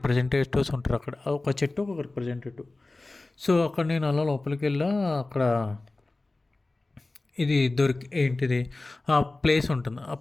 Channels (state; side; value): quieter; right; 3.1 dB